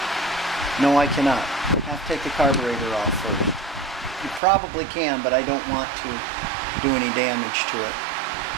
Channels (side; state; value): left; drops out; at 4.4 s